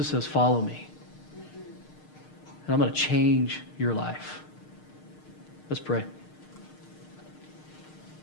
says, follow me. And I'm going to change your life. Let's pray.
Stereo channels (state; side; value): late; right; 6.5 ms